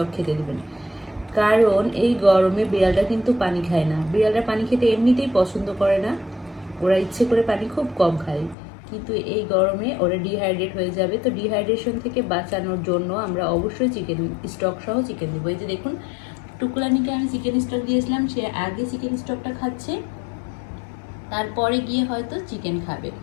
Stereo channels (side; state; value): right; drops out; at 8.6 s